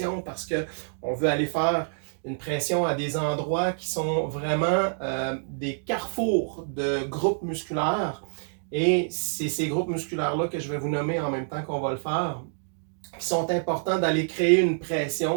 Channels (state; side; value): silent; left; digital silence